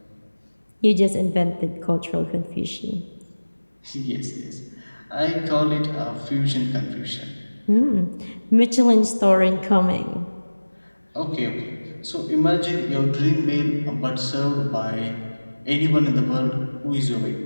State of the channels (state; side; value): inverted; both; correlation -1.00